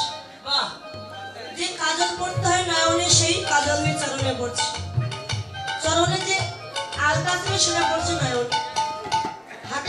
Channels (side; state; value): both; identical; correlation 1.00